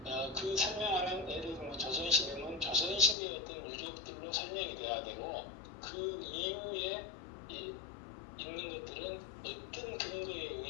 그 설명하는 예를 들면 조선시대는 조선시대의 어떤 유적들로 설명이 돼야 되고 그 이후에 있는 것들은 어떤 근거에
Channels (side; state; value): right; drops out; at 3.2 s